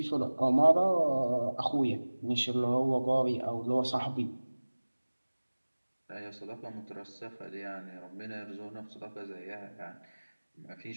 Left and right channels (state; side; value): inverted; both; correlation -1.00